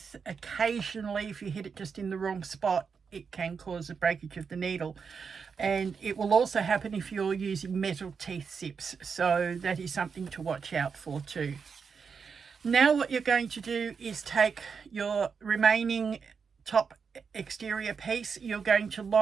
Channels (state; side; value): quieter; left; 5.9 dB